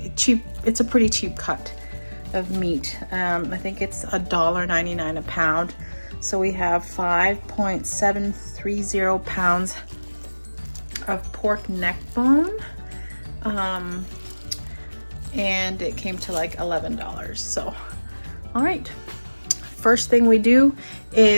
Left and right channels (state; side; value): inverted; both; correlation -1.00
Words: a pretty cheap cut of meat. I think it's $1.99 a pound. So we have 5.730 pounds of pork neck bone. And it came to like $11. So, all right. First thing we do